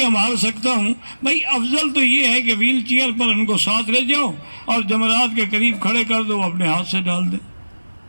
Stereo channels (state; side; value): inverted; both; correlation -1.00